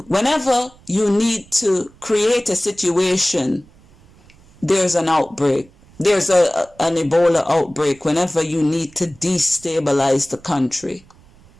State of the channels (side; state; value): right; noise; rumble, 27 dB below the sound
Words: you need to create a situation, there's an outbreak. There's an Ebola outbreak whenever you need to destabilize the country.